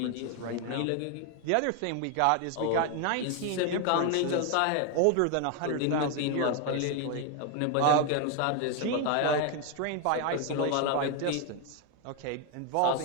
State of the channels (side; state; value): both; different; correlation 0.01